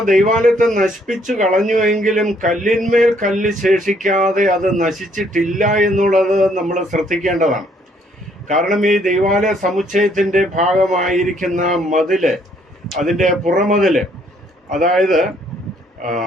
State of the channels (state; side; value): normal; both; correlation 0.66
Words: ദൈവാലയത്തെ നശിപ്പിച്ചു കളഞ്ഞുവെങ്കിലും കല്ലിന്മേൽ കല്ല് ശേഷിക്കാതെ അത് നശിച്ചിട്ടില്ല എന്നുള്ളത് നമ്മൾ ശ്രദ്ധിക്കേണ്ടതാണ്. കാരണം ഈ ദൈവാലയ സമുച്ചയത്തിന്റെ ഭാഗമായിരിക്കുന്ന മതില്, അതിന്റെ പുറമതില്, അതായത്